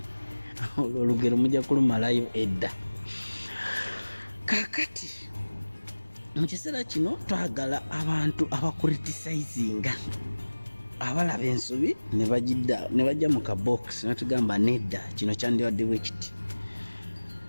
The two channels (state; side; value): inverted; both; correlation -1.00